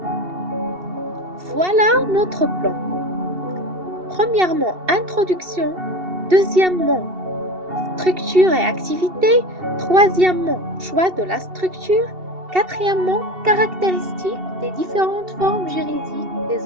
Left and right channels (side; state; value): left; late; 2.7 ms